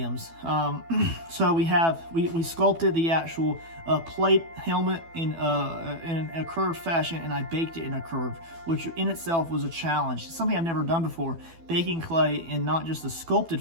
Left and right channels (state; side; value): late; left; 12 ms